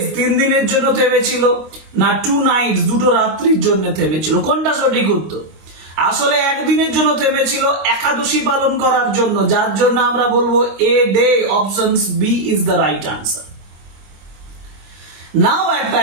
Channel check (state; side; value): late; left; 26 ms